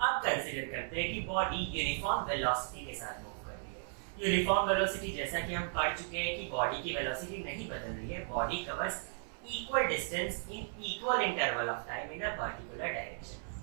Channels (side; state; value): left; silent; 54 dB below the other